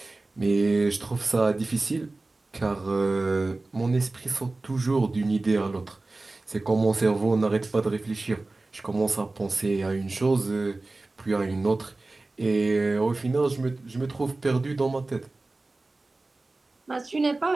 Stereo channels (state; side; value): quieter; left; 3.2 dB